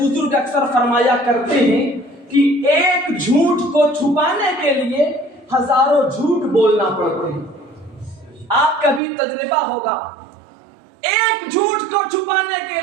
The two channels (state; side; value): drops out; left; at 9.0 s